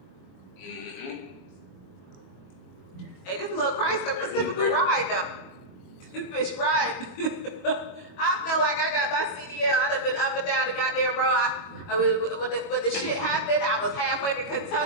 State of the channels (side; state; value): right; late; 22 ms